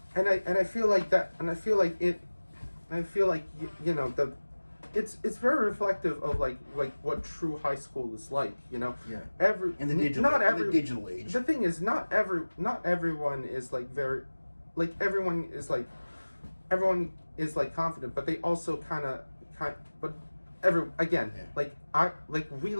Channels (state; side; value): inverted; both; correlation -1.00